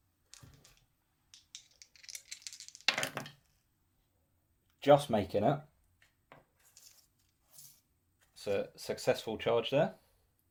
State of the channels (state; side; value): identical; both; correlation 1.00